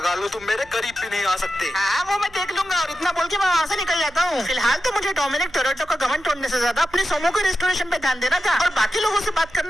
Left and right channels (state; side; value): noise; right; hum, 25 dB below the sound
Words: लो तुम मेरे करीब भी नहीं आ सकते। हाँ वो मैं देख लूंगा। और इतना बोल के मैं वहाँ से निकल जाता हूँ। फिलहाल तो मुझे डोमिनिक टोरेटो का घमंड तोड़ने से ज्यादा अपने सोमो के रेस्टोरेशन पे ध्यान देना था और बाकी लोगों से बात